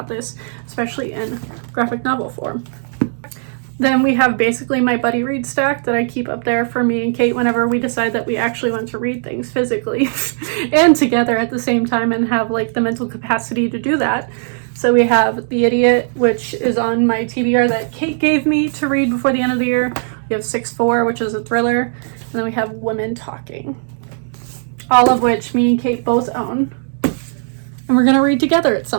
this, especially in graphic novel form. Then we have basically my buddy read stack that I keep up there for me and Kate whenever we decide that we actually want to read things physically and together at the same time and have like the mental capacity to do that. So we have The Idiot, which is on my TBR that Kate gave me to read before the end of the year. We have 6-4, which is a thriller. And then we have Women Talking, all of which me and Kate both own. And we're going to read together at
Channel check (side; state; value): left; silent; digital silence